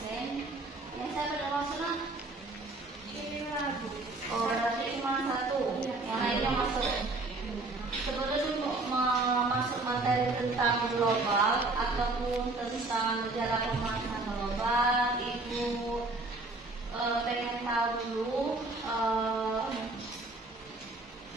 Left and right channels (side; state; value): left; quieter; 3.2 dB